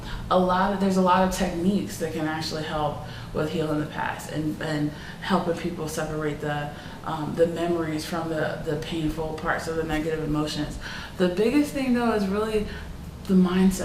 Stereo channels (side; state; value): both; identical; correlation 1.00